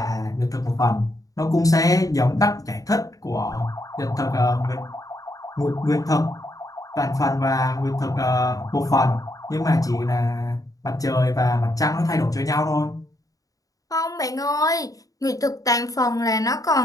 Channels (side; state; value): right; late; 0.17 ms